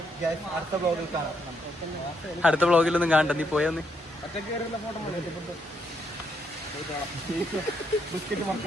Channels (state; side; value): normal; both; correlation 0.76